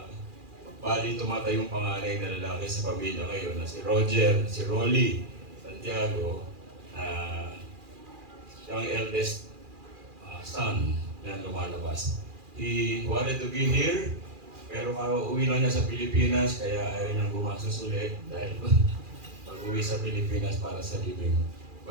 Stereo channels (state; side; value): late; left; 2.4 ms